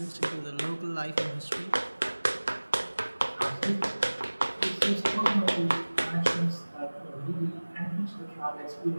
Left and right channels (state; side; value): inverted; both; correlation -1.00